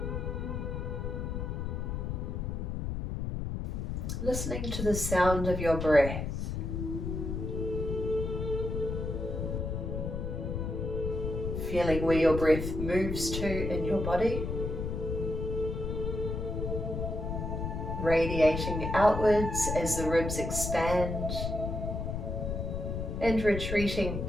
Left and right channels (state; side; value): noise; left; rumble, 3 dB below the sound